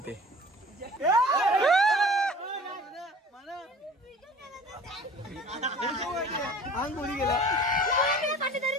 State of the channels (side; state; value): both; normal; correlation 0.44